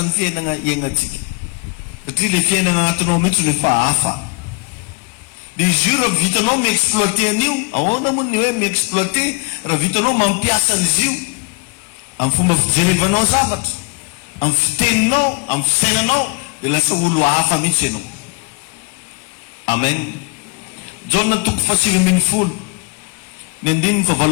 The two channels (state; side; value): quieter; right; 30.2 dB